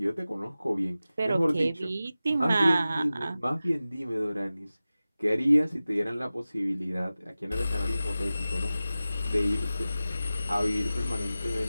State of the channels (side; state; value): both; inverted; correlation -0.95